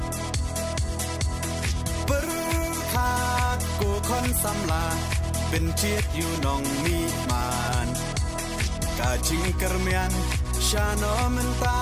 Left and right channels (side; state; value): both; identical; correlation 1.00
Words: per kha ko khon sam la ben chiet yu nong mi man ka jing kermian sha no men ta